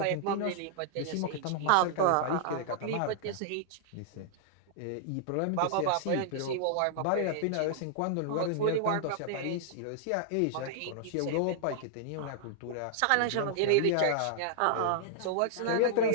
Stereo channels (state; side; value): different; both; correlation -0.01